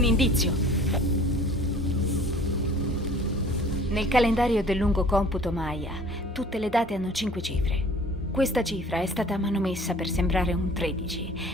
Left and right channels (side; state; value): both; normal; correlation 0.49